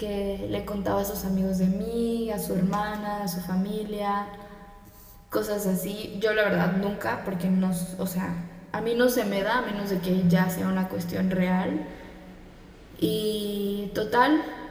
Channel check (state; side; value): identical; both; correlation 1.00